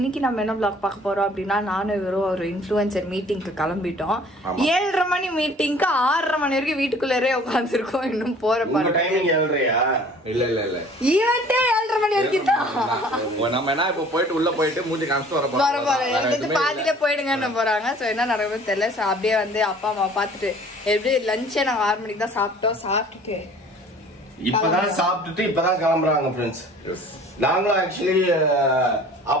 நம்ம என்ன vlog பார்க்க போறோம் அப்படினா நானும் இவரும் ஒரு இன்ஃப்ளூயன்சர் மீட்டிங்க்கு கிளம்பிட்டோம். 7:30 மணி மீட்டிங்க்கு 6:30 மணி வரைக்கும் வீட்டுக்குள்ளேயே உட்கார்ந்திருக்கோம். இன்னும் போற பாரு. உங்க டைமிங் 7:30யா? இல்ல. ஈவென்ட்டே 7:30 மணி வரைக்கும் தான். நம்ம என்ன இப்ப போயிட்டு உள்ள போயிட்டு மூஞ்சி காமிச்சிட்டு வர போறோம். வந்து பாதியில போய்டுங்கன்னு போறாங்க. சோ என்ன நடக்குதுன்னு தெரியல. சோ அப்படியே வந்து அப்பா அம்மா பார்த்துட்டு எப்படி லஞ்சே நாங்க 6 மணிக்கு தான் சாப்பிட்டோம். சாப்பிட்டுட்டு இப்பதான் சாப்பிட்டுட்டு இப்பதான் கிளம்புறாங்க ஃப்ரெண்ட்ஸ். நாங்களும் ஆக்சுவலி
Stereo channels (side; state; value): both; normal; correlation 0.50